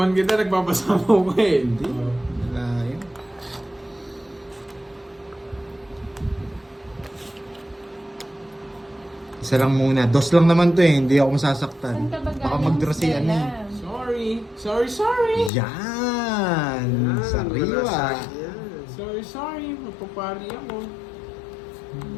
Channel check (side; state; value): right; drops out; at 15.5 s